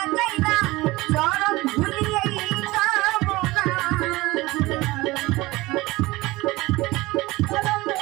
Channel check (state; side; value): quieter; left; 20.4 dB